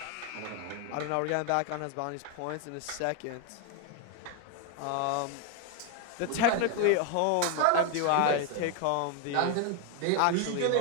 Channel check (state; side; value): different; both; correlation 0.01